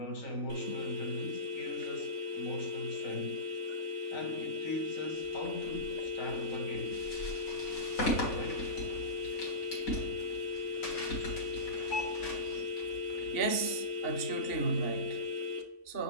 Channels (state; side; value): late; right; 3.5 ms